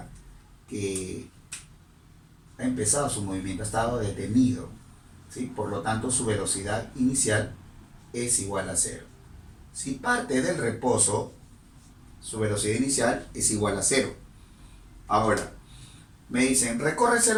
que ha empezado su movimiento, ha estado detenido, ¿sí? Por lo tanto, su velocidad inicial es igual a 0. Si parte del reposo, su velocidad inicial es igual a 0. Ahora, me dicen, recorre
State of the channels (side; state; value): both; identical; correlation 1.00